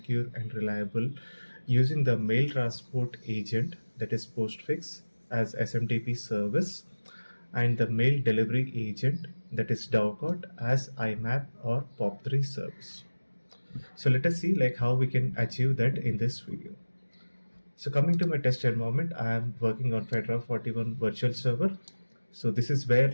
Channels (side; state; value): both; inverted; correlation -1.00